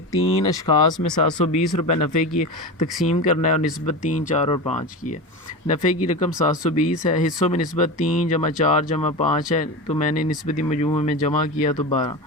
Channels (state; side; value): normal; both; correlation 0.24